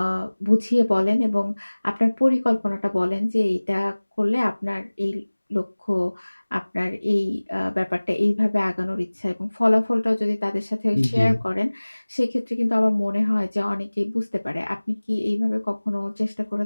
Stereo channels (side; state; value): both; inverted; correlation -1.00